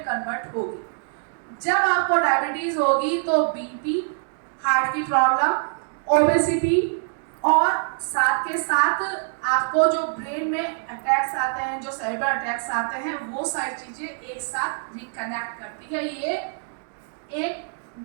होगी। जब आपको डायबिटीज होगी तो बीपी, हार्ट की प्रॉब्लम, ओबेसिटी और साथ के साथ आपको जो ब्रेन में अटैक्स आते हैं, जो सेरेब्रल अटैक्स आते हैं, वो सारी चीजें एक साथ रिकनेक्ट करती है। ये एक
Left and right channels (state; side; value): silent; left; digital silence